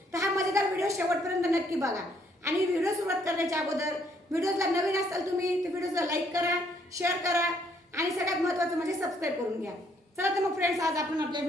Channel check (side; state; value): both; normal; correlation 0.68